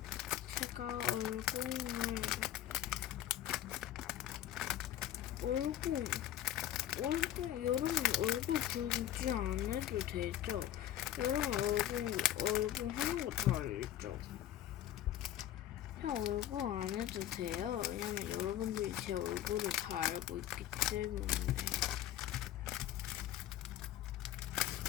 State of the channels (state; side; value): quieter; right; 12.0 dB